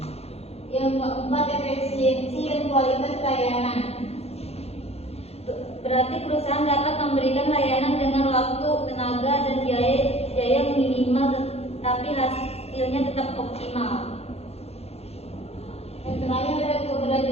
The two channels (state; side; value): late; right; 0.30 ms